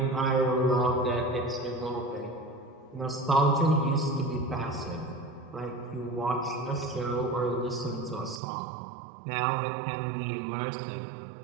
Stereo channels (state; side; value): drops out; left; at 8.4 s